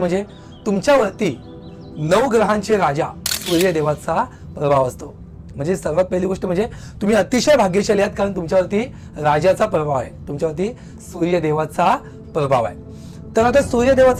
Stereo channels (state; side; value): identical; both; correlation 1.00